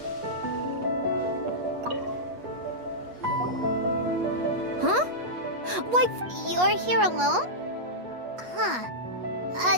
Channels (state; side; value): late; left; 8.3 ms